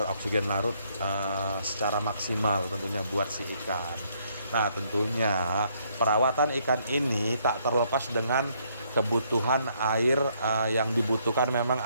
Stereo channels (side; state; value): both; inverted; correlation -0.70